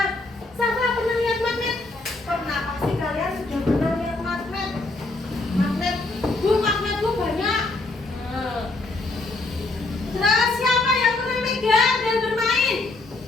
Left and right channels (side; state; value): right; quieter; 3.1 dB